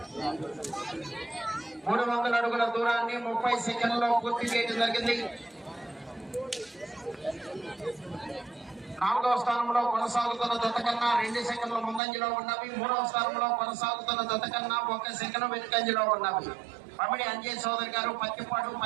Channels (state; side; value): drops out; left; at 12.0 s